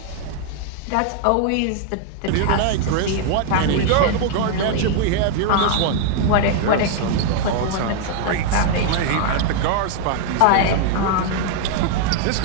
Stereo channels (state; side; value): different; both; correlation 0.00